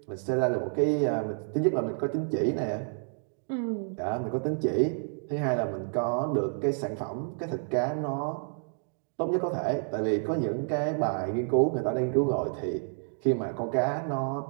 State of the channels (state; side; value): silent; left; digital silence